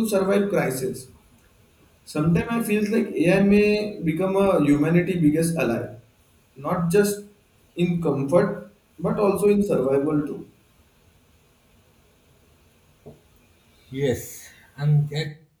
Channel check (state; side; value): identical; both; correlation 1.00